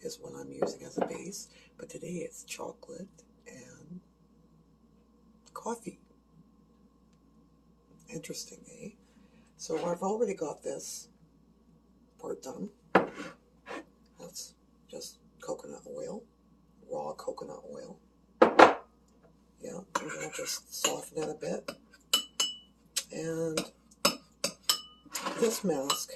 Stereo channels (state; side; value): identical; both; correlation 1.00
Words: is what I'm using as a base, but today it's chocolate and coffee. Interesting, eh? So I've already got this part done. That's just coconut oil, raw coconut oil. Yeah, I'm going to just soften it a bit. And this